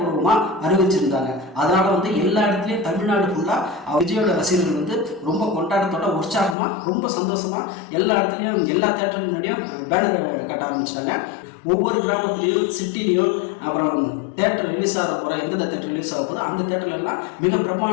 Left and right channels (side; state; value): right; drops out; at 6.6 s